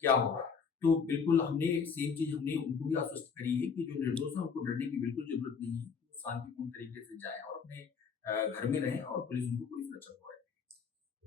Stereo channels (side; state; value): right; quieter; 5.9 dB